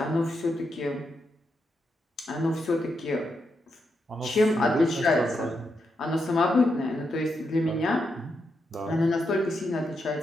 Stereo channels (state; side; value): normal; both; correlation 0.83